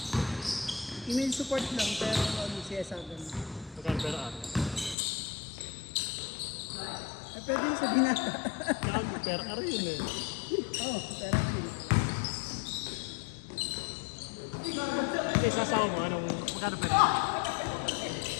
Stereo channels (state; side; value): drops out; right; at 5.0 s